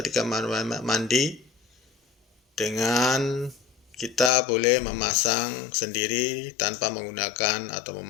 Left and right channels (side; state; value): right; drops out; at 4.3 s